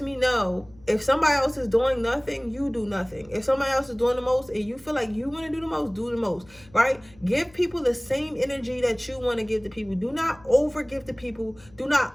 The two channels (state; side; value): noise; left; hum, 26 dB below the sound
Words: me know if somebody else is doing nothing, you do nothing. If somebody else is doing the most and you feel like you want to do the most, right? Give people the same energy that you want to give to people. Do not over give to people. Do not